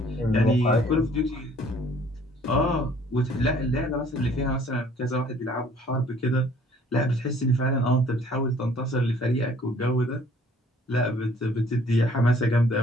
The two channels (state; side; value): normal; both; correlation 0.57